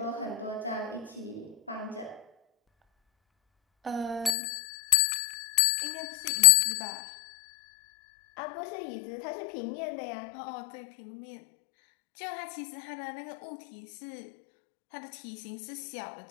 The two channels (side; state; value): right; drops out; at 4.4 s